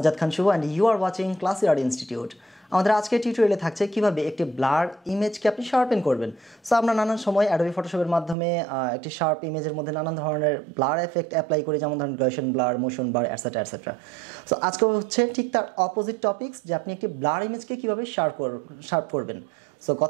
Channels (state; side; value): drops out; left; at 8.3 s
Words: Khan Shubha and you are watching Classyart Institute. আমাদের আজকের টিউটোরিয়ালে থাকছে কিভাবে একটি ব্লার ইমেজকে আপনি শার্পেন করবেন। সো আমরা নানান সময় অ্যাডোবি ফটোশপের মাধ্যমে একটি শার্প ইমেজের মধ্যে নানান ধরনের ব্লার এফেক্ট অ্যাপ্লাই করি, যেমন ধরুন gradation blur, motion blur, et cetera et cetera. So আজকে হচ্ছে ঠিক তার অপোজিট টপিকস, যে আপনি একটি ব্লার ইমেজকে কিভাবে শার্প করবেন। সো